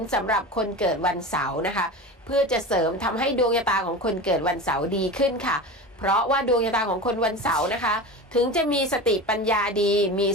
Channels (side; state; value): both; normal; correlation 0.29